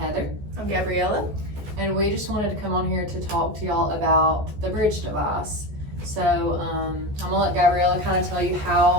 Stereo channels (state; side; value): late; left; 14 ms